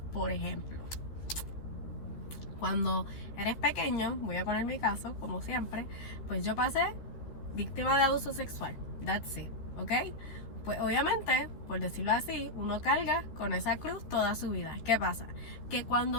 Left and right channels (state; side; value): late; right; 13 ms